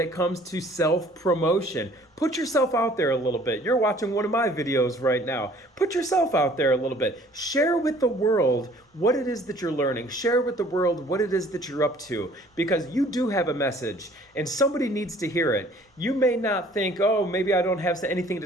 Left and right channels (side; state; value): both; normal; correlation 0.55